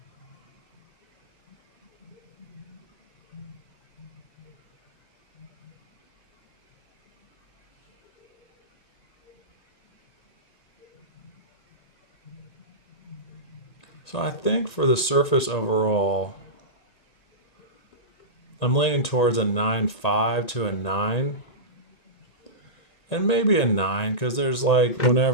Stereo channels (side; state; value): right; late; 1.8 ms